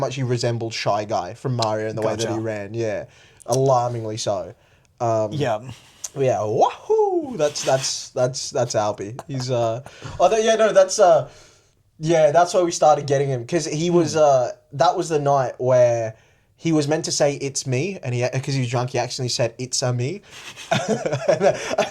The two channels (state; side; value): identical; both; correlation 1.00